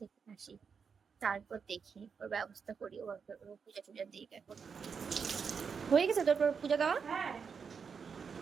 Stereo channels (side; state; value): left; quieter; 6.1 dB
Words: আসি তারপর দেখি ওর ব্যবস্থা করি। ও পূজা টুজা দিই। এখন হয়ে গেছে তোর পূজা দেওয়া?